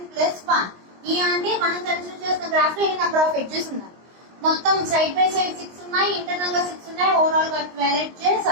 ప్లస్ 1. ఈ అంటే మనం కన్సిడర్ చేసిన గ్రాఫ్ లో ఎన్ని నెంబర్ ఆఫ్ ఎడ్జెస్ ఉన్నాయి. మొత్తం సైడ్ బై సైడ్ 6 ఉన్నాయి, ఇంటర్నల్ గా 6 ఉన్నాయి, ఓవరాల్ గా 12 ఎడ్జెస్.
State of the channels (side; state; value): left; late; 22 ms